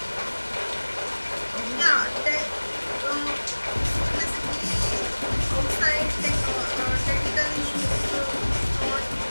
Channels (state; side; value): inverted; both; correlation -1.00